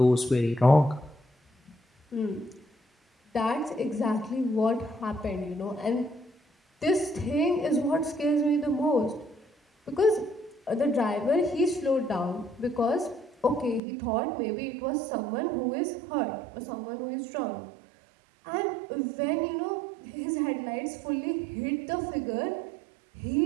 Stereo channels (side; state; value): left; drops out; at 13.8 s